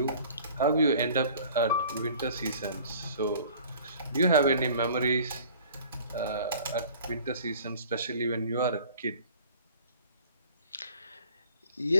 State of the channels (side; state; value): both; inverted; correlation -0.48